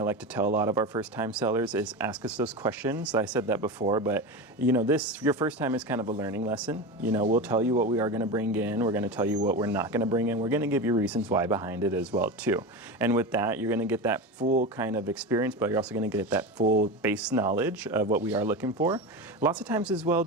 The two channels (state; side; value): normal; both; correlation 0.23